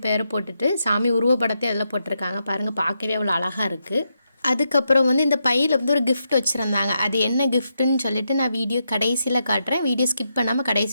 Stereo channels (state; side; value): inverted; both; correlation -0.83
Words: பேரை போட்டுட்டு சாமி உருவப்படத்தையும் அதில் போட்டிருக்காங்க. பாருங்கள், பார்க்கவே அவ்வளோ அழகாக இருக்குது. அதுக்கப்புறம் வந்து இந்த பையில் வந்து ஒரு கிஃப்ட் வச்சுருந்தாங்க. அது என்ன கிஃப்ட்டுன்னு சொல்லிட்டு நான் வீடியோ கடைசியில் காட்டுறேன். வீடியோ ஸ்கிப் பண்ணாமல்